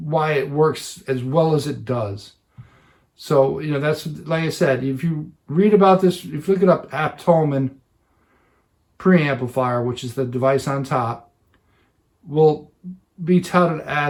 why it works as well as it does. So, that's, like I said, if you read about this, if you look it up, Apt Holman preamplifier, which is the device on top, will be touted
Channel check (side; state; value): both; identical; correlation 1.00